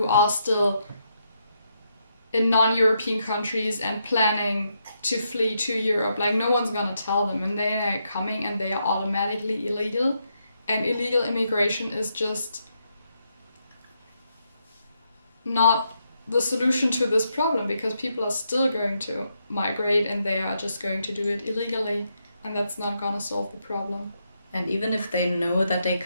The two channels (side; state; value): both; inverted; correlation -0.80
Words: are still in non-European countries and planning to flee to Europe? Like, no one's gonna tell them, and they are coming and they are automatically illegal, and illegal immigration is just not the solution to this problem, because people are still going to migrate and they are just going to do it illegally, and that's not gonna solve the problem. And even if they know that they